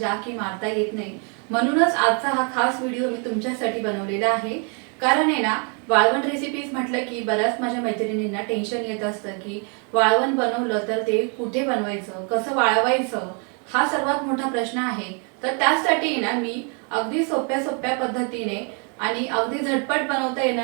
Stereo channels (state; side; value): quieter; left; 37.9 dB